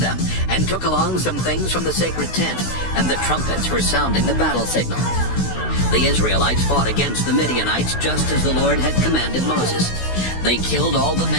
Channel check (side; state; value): right; late; 16 ms